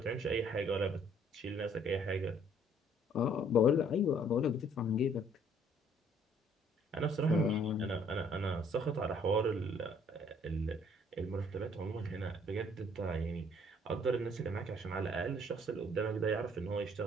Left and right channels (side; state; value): both; normal; correlation 0.61